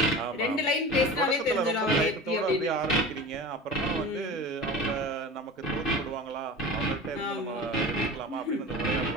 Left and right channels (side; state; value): both; normal; correlation 0.34